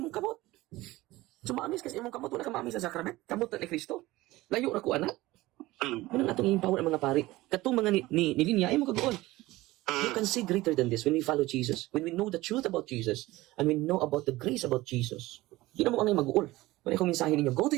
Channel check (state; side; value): quieter; left; 18.6 dB